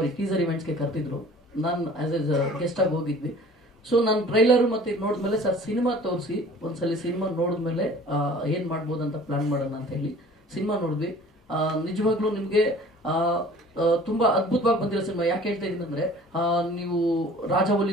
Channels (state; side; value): normal; both; correlation 0.48